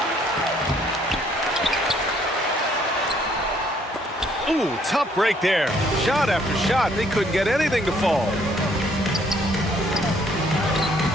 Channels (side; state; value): both; normal; correlation 0.65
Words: Ooh, tough break there. Shot after shot, they couldn't get anything to fall.